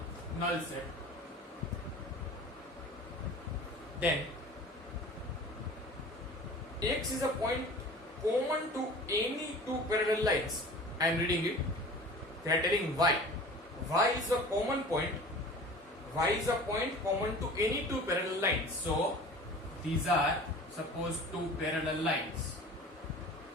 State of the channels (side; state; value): both; normal; correlation 0.41